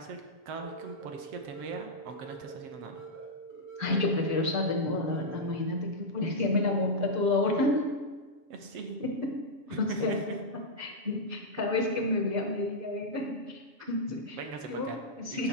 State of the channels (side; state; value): left; late; 7.7 ms